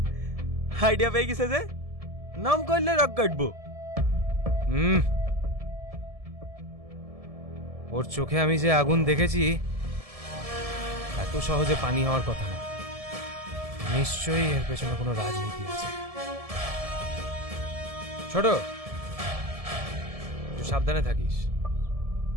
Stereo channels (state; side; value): late; left; 1.7 ms